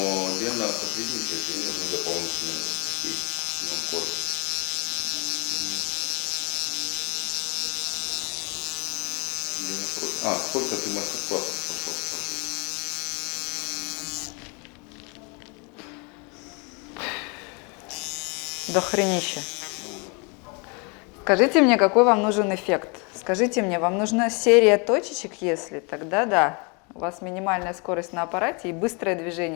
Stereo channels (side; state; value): right; quieter; 32.6 dB